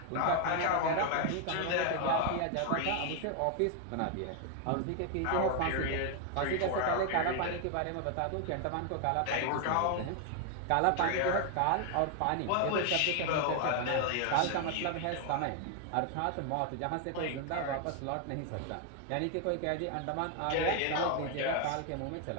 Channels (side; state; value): both; different; correlation 0.00